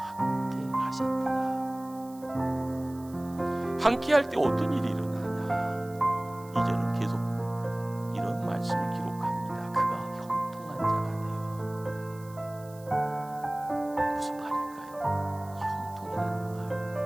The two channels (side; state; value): right; noise; hiss, 23 dB below the sound